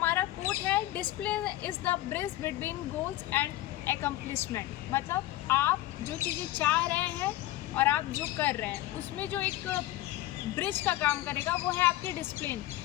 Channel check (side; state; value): right; quieter; 15.7 dB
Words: कोट है, discipline is the bridge between goals and accomplishment. मतलब आप जो चीज़ें चाह रहे हैं और आप जो कर रहे हैं उसमें जो एक ब्रिज का काम करेगा वो है आपकी डिसिप्लिन,